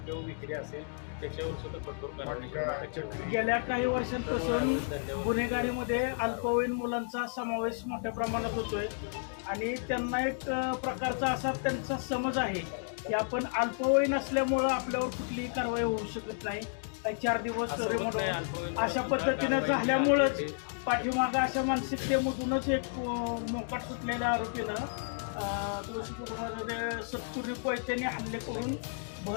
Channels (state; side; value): silent; right; digital silence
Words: किंवा विक्री असेल त्याच्यावर सुद्धा कठोर कारवाई गेल्या काही वर्षांपासून गुन्हेगारीमध्ये अल्पवयीन मुलांचा समावेश मोठ्या प्रमाणात होतोय आणि त्यांना एक प्रकारचा असा त्यांचा समज आहे की आपण अल्पवयीन असल्यामुळं आपल्यावर कुठलीही कारवाई होऊ शकत नाही. 4 दिवस अशा पद्धतीनं झाल्यामुळंच पाठीमागं अशा मानसिकतेमधूनच एक मोकाट सुटलेल्या आरोपीनं तुळशीपुरामध्ये सत्तुरी कोयत्याने हल्ले करून